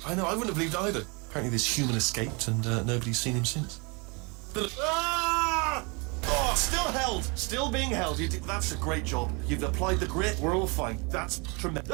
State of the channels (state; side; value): quieter; left; 30.4 dB